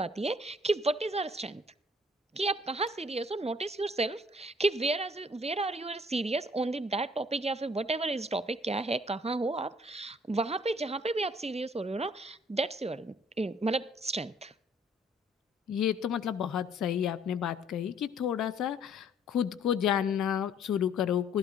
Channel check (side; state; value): both; normal; correlation 0.59